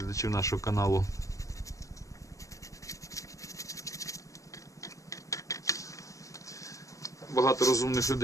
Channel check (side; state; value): right; late; 0.16 ms